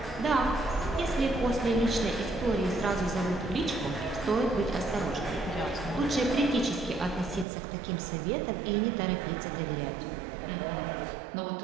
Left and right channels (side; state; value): left; drops out; at 7.5 s